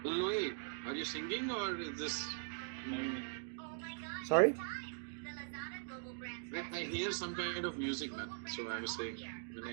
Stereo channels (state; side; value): silent; left; digital silence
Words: Louis, are you singing or is this? Sorry? I hear some kind of music, man. So I was saying.